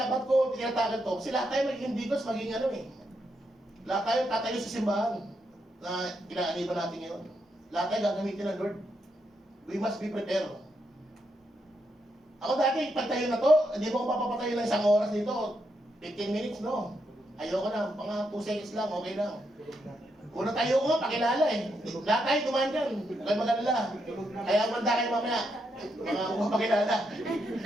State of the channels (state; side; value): normal; both; correlation 0.81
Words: ko, tinatagal to? Kasi lahat tayo magiging deacons, magiging ano eh. Lahat tayo tatayo sa simbahan na kinaaniban natin ngayon. Lahat tayo gagamitin ng Lord. We must be prepared. Ako dati, pagtayo na to, hindi mo ko mapapatayo ng isang oras dito. 15 minutes, no? Ayoko na, mga 2 seconds lang, okay lang. Una tayo ko nga, pakilala eh. Lahat tayo dumaan dyan, huwag mag-alala. Kaya manda kayo mamaya, mga pakilala.